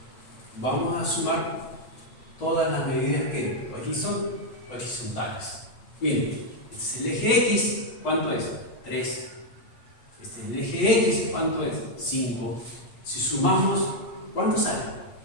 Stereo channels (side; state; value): right; late; 8.3 ms